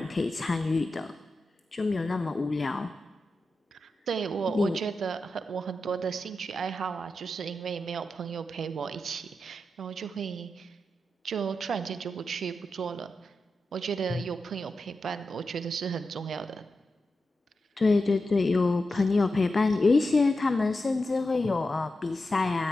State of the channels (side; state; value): both; normal; correlation 0.90